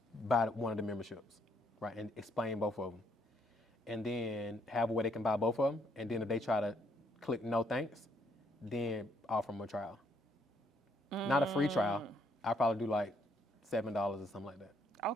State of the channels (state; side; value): normal; both; correlation 0.70